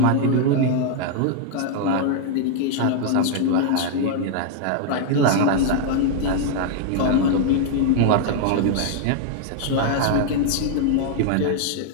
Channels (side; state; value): both; different; correlation 0.00